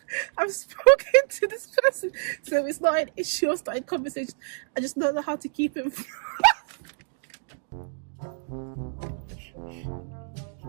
I've spoken to this person, so it's not an issue of starting conversation. I just don't know how to keep it. Is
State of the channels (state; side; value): silent; left; digital silence